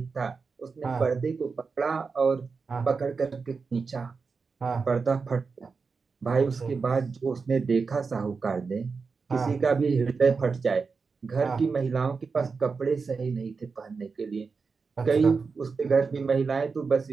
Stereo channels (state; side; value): quieter; left; 4.9 dB